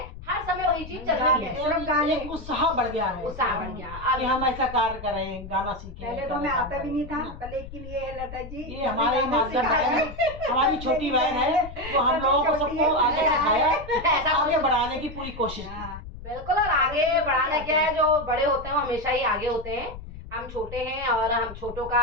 हर समय वही चीज चल रही है। सिर्फ गाने। एक उत्साह बढ़ गया है, उत्साह बढ़ गया। कि हम ऐसा कार्य करें, गाना सीखें। पहले तो गाना हमें काम आता भी नहीं करें, था, पर लेकिन ये है लता जी, ये हमारे गाना माध्यम सिखाया। है, हमारी छोटी बहन है, वो हम लोगों को सबको आगे सिखाया, ऐसा आगे बढ़ाने की पूरी कोशिश की। हाँ, बिल्कुल। और आगे बढ़ाना क्या है, जो बड़े होते हैं वो हमेशा ही आगे होते हैं, हम छोटे हैं, और हम छोटों का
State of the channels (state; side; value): noise; left; rumble, 13 dB below the sound